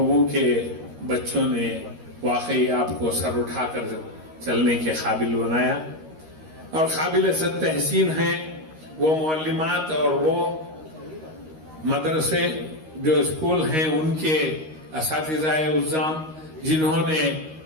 کے بچوں نے واقعی آپ کو سر اٹھا کر چلنے کے قابل بنایا، اور قابل صد تحسین ہیں وہ معلمات اور وہ مدرسے جو اسکول ہیں ان کے اساتذہ اعزام جنہوں نے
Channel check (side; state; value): left; late; 13 ms